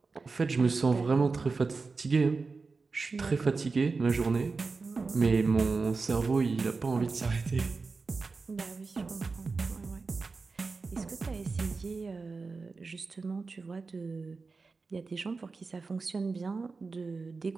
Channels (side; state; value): left; quieter; 4.2 dB